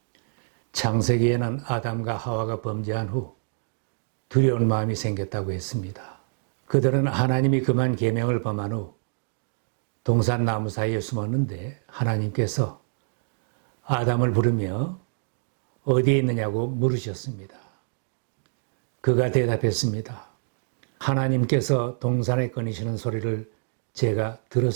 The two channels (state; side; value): silent; left; digital silence